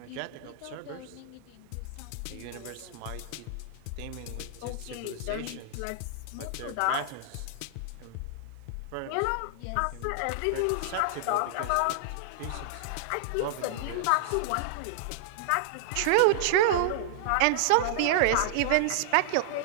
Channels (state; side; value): different; both; correlation -0.01